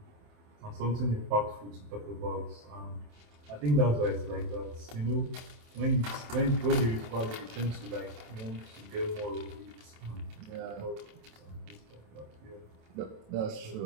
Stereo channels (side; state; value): left; late; 27 ms